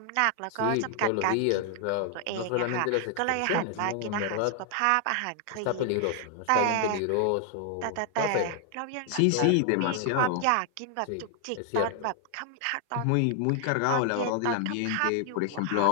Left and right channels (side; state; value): both; different; correlation 0.00